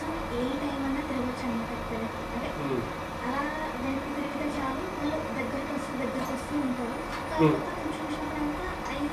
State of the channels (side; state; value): both; identical; correlation 1.00